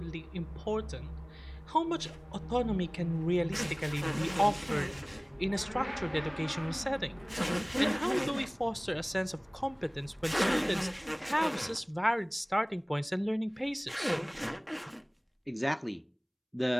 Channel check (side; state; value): both; identical; correlation 1.00